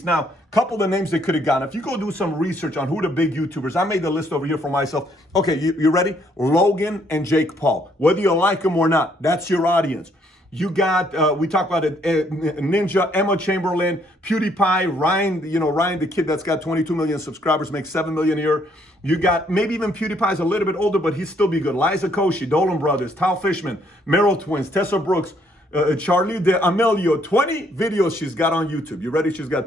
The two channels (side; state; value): both; normal; correlation 0.68